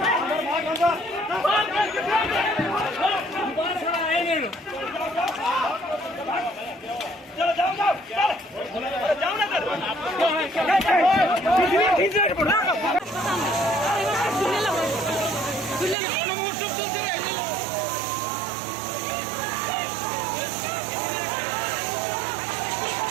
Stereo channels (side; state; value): left; drops out; at 16.0 s